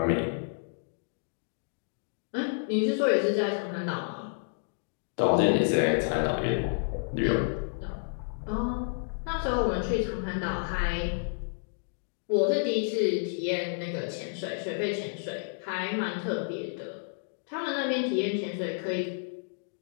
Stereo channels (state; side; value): silent; right; digital silence